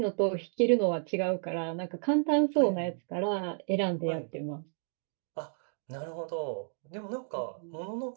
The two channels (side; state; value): left; silent; digital silence